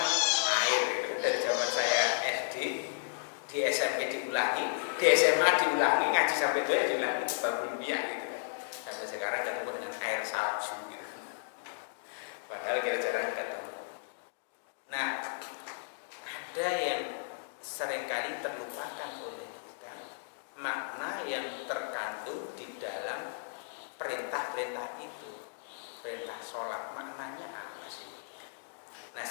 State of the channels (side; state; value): right; silent; digital silence